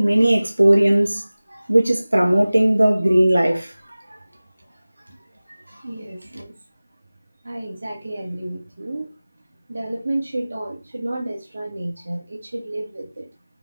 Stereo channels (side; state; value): both; inverted; correlation -0.98